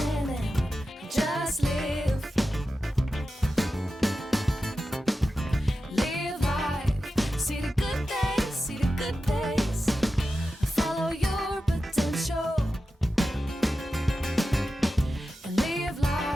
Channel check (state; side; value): normal; both; correlation 0.93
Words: it, just live. Live life, see the good days, see the good days. Follow your potential and live